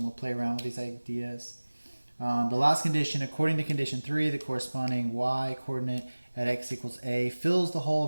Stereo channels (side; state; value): both; inverted; correlation -1.00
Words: we'll play around with these ideas. The last condition, according to condition 3, the corresponding y coordinate at x equals a fills the hole in